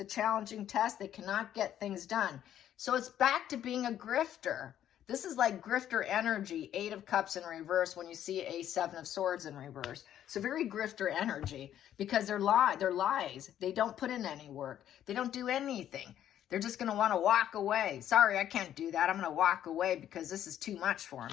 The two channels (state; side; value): quieter; right; 11.0 dB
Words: challenging test. They cannot get things done. So it's back to being a grifter. This is like grifter energy, 8 of Cups in reverse when you see a 7 of Swords in reverse. So very grifter energy because they're lies. They don't put in any work. They don't do anything. They're just going to want to walk away. Sorry, I can't do that. I'm going to walk away because this is too much for